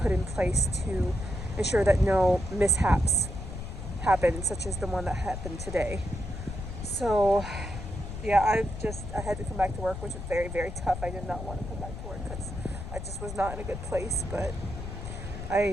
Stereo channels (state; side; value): noise; left; rumble, 8 dB below the sound